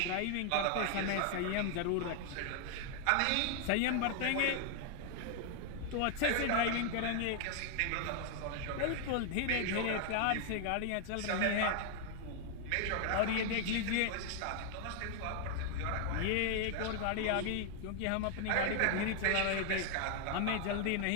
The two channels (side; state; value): both; different; correlation 0.00